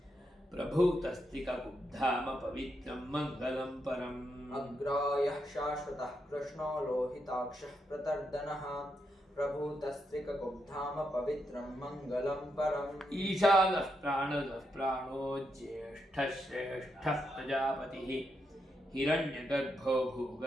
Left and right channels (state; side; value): normal; both; correlation 0.82